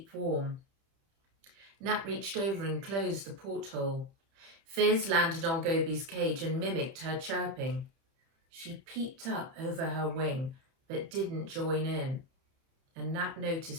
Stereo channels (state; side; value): late; left; 30 ms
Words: warm. Nat reached over and closed the porthole. Fizz landed on Gobi's cage and mimicked her chirping. She peeped up over her wing, but didn't join in, and Nat